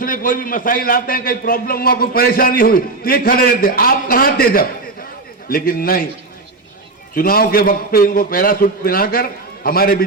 कोई भी मसाइल आते हैं, कहीं प्रॉब्लम हुआ, कोई परेशानी हुई तो ये खड़े रहते हैं। आप कहां थे जब? लेकिन नहीं, चुनाव के वक्त पे इनको पैरासूट पहनाकर हमारे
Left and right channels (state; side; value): quieter; left; 3.4 dB